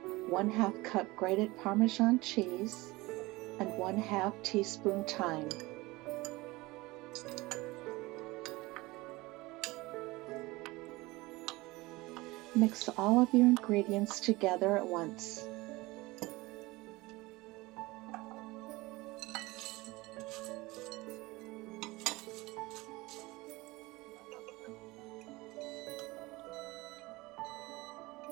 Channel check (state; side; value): quieter; left; 21.4 dB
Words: 1/2 cup grated Parmesan cheese, and 1/2 teaspoon thyme. Mix all of your ingredients together at once.